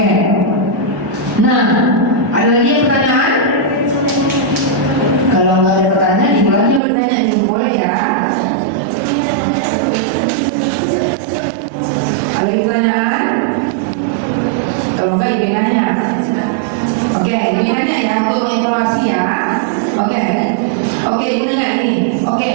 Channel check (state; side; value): drops out; left; at 6.8 s